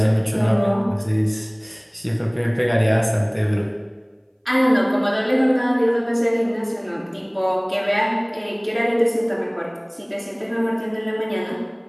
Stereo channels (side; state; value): both; identical; correlation 1.00